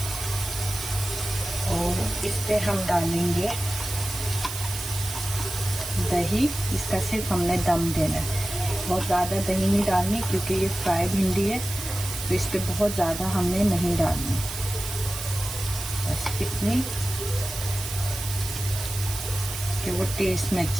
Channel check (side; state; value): right; noise; hiss, 7 dB below the sound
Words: और इस पे हम डालेंगे दही। इसका सिर्फ हमने दम देना है, बहुत ज़्यादा दही नहीं डालनी क्योंकि ये फ्राई भिंडी है, तो इस पे बहुत ज़्यादा हमने नहीं डालनी, बस इतनी कि वो टेस्ट में